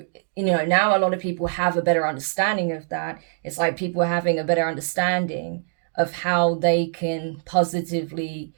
you know, now a lot of people have a better understanding of that. It's like people are having a better understanding of how they can positively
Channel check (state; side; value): silent; left; digital silence